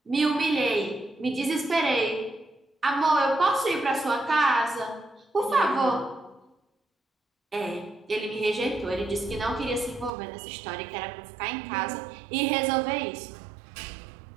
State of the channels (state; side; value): drops out; left; at 10.1 s